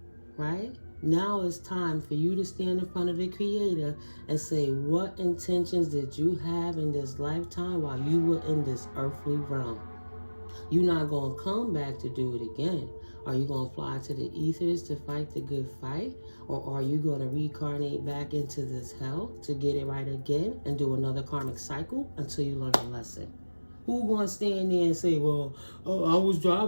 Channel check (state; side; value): inverted; both; correlation -1.00